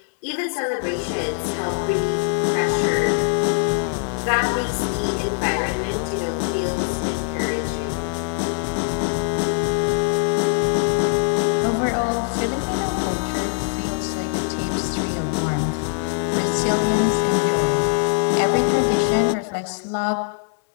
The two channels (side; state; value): right; silent; digital silence